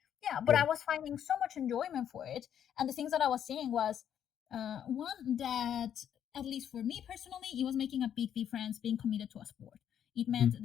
Yeah, but Yeah. I was finding so much enjoyment for it. And the things that I was seeing was one that, at least for me personally, it was making a big difference being committed to a sport. It meant Mhm.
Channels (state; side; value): quieter; right; 9.4 dB